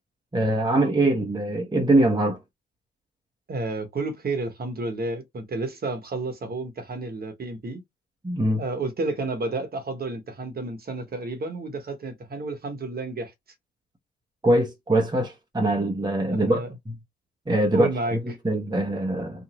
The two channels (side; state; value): both; normal; correlation 0.68